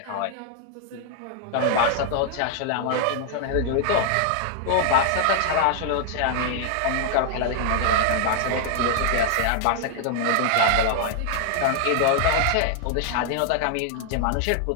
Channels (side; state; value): both; different; correlation 0.00